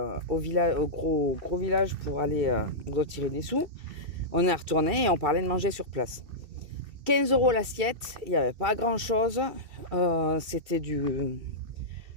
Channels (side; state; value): left; late; 2.7 ms